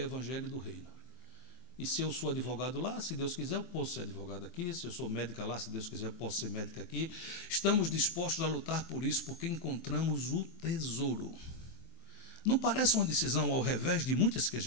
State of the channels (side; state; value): right; late; 23 ms